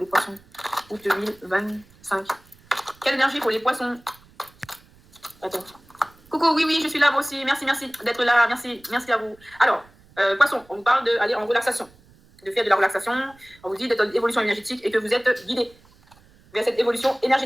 les poissons? Août 2025. Quelle énergie pour les poissons? Attends. Coucou, oui, je suis là, moi aussi. Merci d'être là. Merci à vous. Alors, poissons, on vous parle d'aller en relaxation, de faire de la relaxation. On vous dit d'être en évolution énergétique et que vous êtes guidé vers cette évolution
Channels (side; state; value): right; noise; rumble, 28 dB below the sound